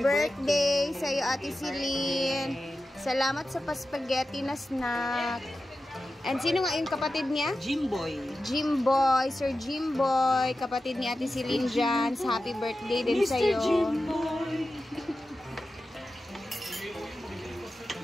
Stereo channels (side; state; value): both; normal; correlation 0.93